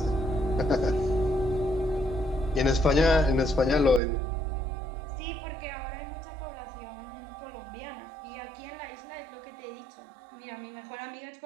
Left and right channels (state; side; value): drops out; left; at 4.0 s